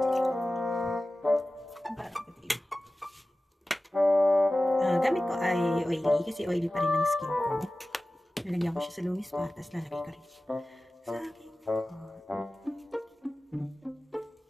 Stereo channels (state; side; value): normal; both; correlation 0.96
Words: Gamit ko ay oily kasi oily pa rin ang skin ko. Nalagyan ko siya sa lumis pa, tapos lalagay ko rin sa aking